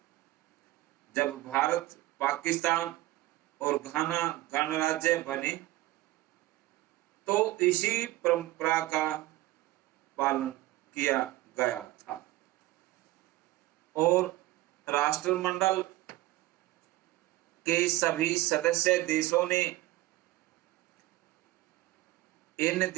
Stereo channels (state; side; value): quieter; left; 17.3 dB